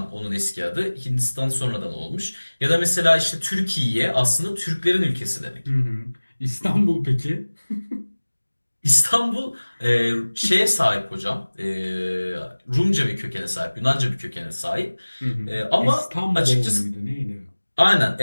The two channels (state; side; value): inverted; both; correlation -1.00